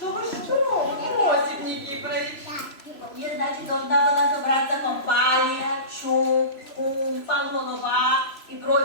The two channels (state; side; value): late; right; 3.0 ms